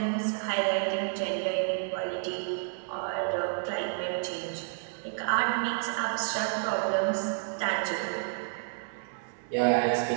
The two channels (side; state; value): left; silent; 58 dB below the other